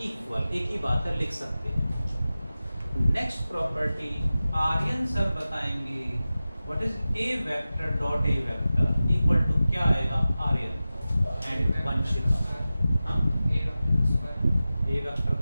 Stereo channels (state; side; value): inverted; both; correlation -0.95